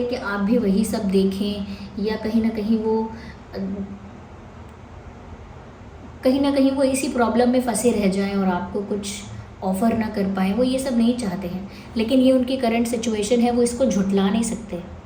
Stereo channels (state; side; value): identical; both; correlation 1.00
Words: कि आप भी वही सब देखें, या कहीं ना कहीं वो इसी प्रॉब्लम में फंसे रह जाएं और आपको कुछ ऑफ़र ना कर पाएँ। वो ये सब नहीं चाहते हैं, लेकिन ये उनकी करंट सिचुएशन है, वो इसको झुठला नहीं सकते।